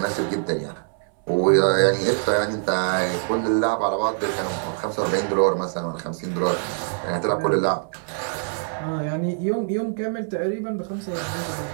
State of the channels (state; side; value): silent; left; 63 dB below the other